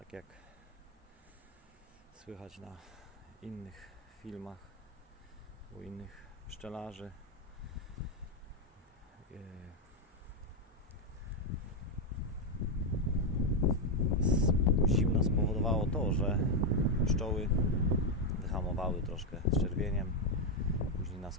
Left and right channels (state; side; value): normal; both; correlation 0.03